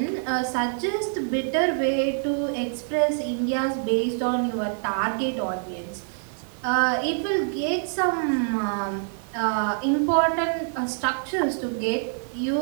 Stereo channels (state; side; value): silent; left; 61 dB below the other